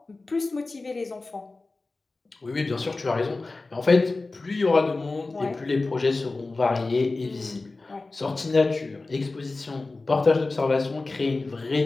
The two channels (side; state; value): right; quieter; 3.4 dB